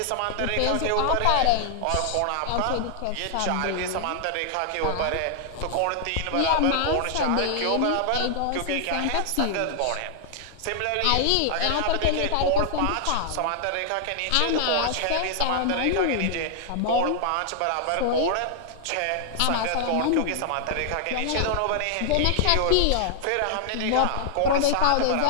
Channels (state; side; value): different; both; correlation 0.00